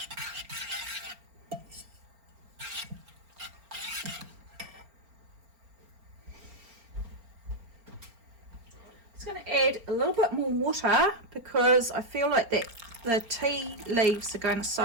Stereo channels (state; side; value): late; left; 4.4 ms